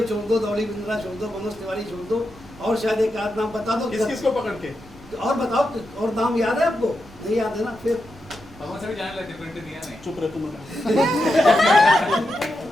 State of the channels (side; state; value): both; normal; correlation 0.87